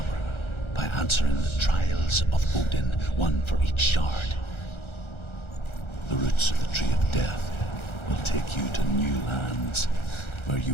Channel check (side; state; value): right; late; 1.3 ms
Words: by answering the trials of Odin, one for each shard. The roots of the Tree of Death will take you to new lands, where